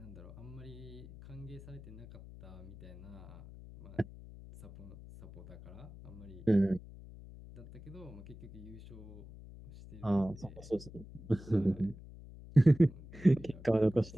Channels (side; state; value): left; noise; hum, 16 dB below the sound